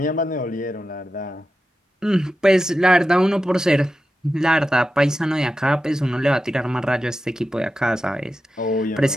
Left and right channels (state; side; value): normal; both; correlation 0.91